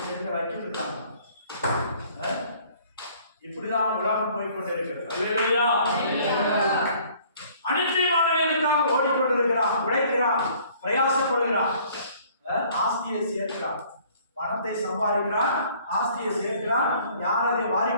தெரிஞ்ச வைக்கிட்டு இருக்காங்க. இப்படிதான் உலகம் போய்கொண்டு இருக்கிறது. அல்லேலூயா. அனித்தியமானவர்களுக்காக ஓடிக்கொண்டிருக்கிறான், உழைக்கிறான், பிரயாசப்படுகிறான், ஆஸ்தியை சேர்க்கிறான், பணத்தை சம்பாதிக்கிறான், ஆஸ்தியை சேர்க்கிறான். யார் அதை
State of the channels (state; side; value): inverted; both; correlation -0.56